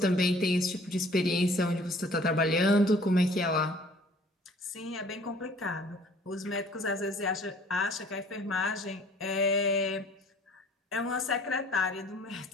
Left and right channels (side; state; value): both; normal; correlation 0.53